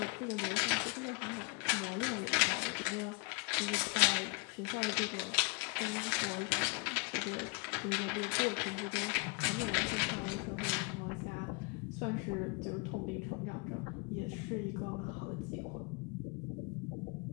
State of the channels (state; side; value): quieter; right; 28.9 dB